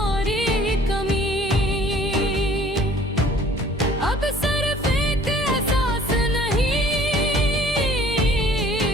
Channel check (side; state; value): both; normal; correlation 0.53